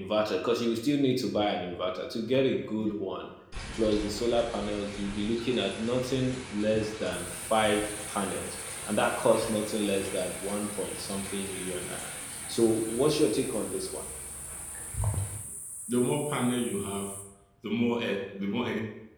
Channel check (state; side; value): identical; both; correlation 1.00